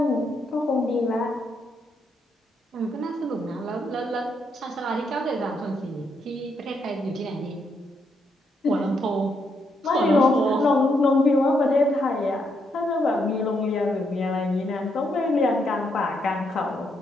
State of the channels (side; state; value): both; normal; correlation 0.77